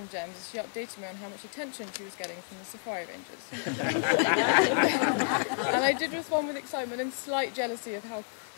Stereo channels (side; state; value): right; silent; digital silence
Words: Gems as she updated me on how much attention she was getting from the safari rangers. And I did respond with excitement and slight jealousy of how